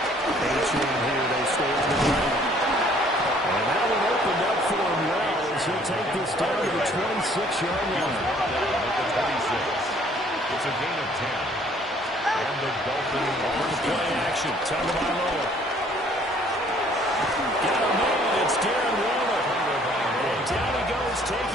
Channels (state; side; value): normal; both; correlation 0.59